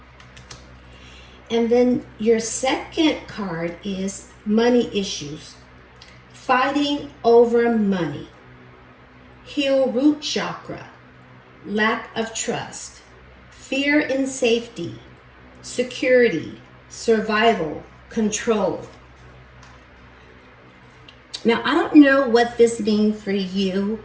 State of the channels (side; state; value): both; identical; correlation 1.00